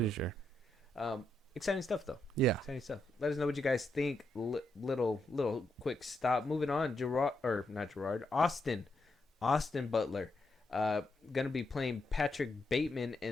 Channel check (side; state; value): both; normal; correlation 0.82